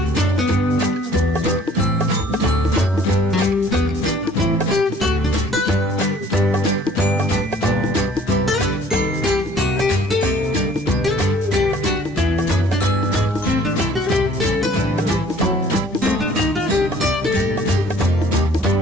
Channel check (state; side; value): normal; both; correlation 0.55